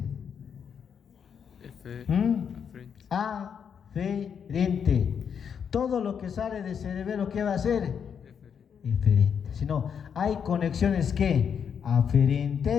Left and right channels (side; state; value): right; quieter; 7.4 dB